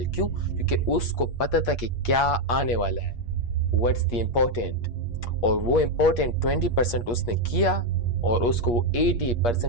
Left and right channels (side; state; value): right; late; 8.5 ms